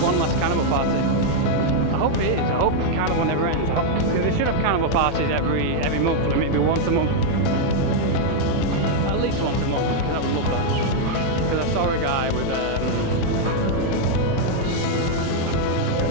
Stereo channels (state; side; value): different; both; correlation 0.00